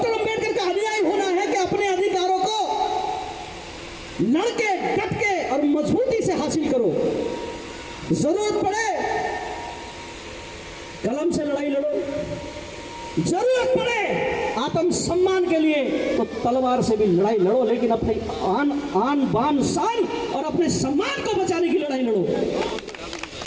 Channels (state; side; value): identical; both; correlation 1.00